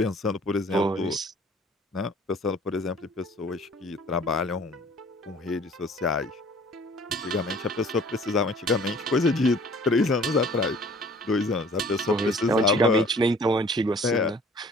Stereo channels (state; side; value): normal; both; correlation 0.52